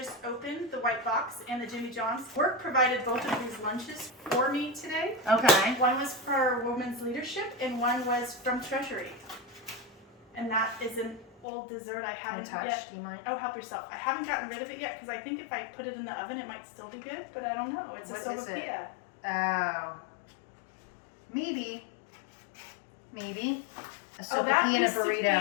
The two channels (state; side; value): drops out; right; at 11.5 s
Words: opened, the white box, and the Jimmy John's. Work provided both of these lunches for me today. Okay. One was for Women's Leadership, and one was from Treasury. And that is an old dessert I haven't Untouched, yet. do you mind? Oh, help yourself. I haven't gotten rid of it yet because I think if I put it in the oven, it might still be good, but I don't know. It's What a is it? sopapilla. Oh. Maybe. Maybe. A Oh, that sopapilla and a used to be a